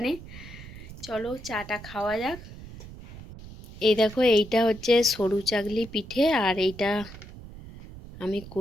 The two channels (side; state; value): right; noise; rumble, 15 dB below the sound